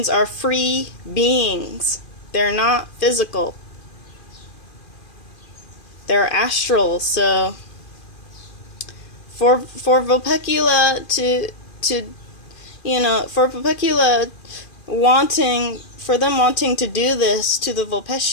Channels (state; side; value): late; right; 2.4 ms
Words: are free beings. They're not physical. They're astral. So for Vulpecula for Vulpecula wanting to do this to the